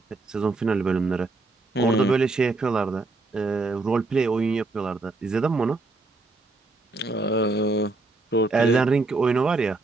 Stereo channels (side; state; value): left; quieter; 3.3 dB